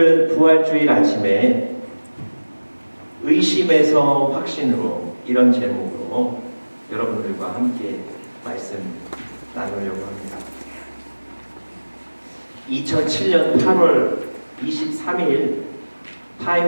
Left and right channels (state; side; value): inverted; both; correlation -1.00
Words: 부활주일 아침에 의심에서 확신으로 이런 제목으로 여러분들과 함께 말씀 나누려고 합니다. 2007년 8월 23일